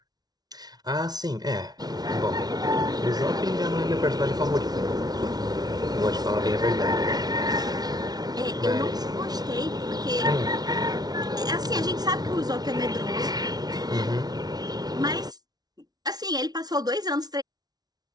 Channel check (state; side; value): late; left; 0.19 ms